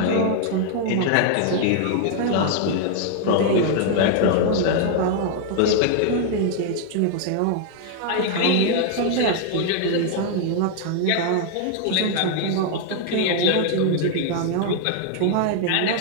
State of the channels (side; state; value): both; different; correlation 0.00